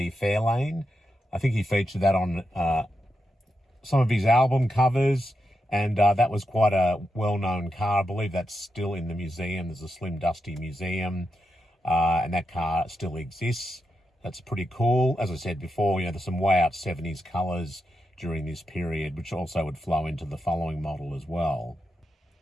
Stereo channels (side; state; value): both; normal; correlation 0.86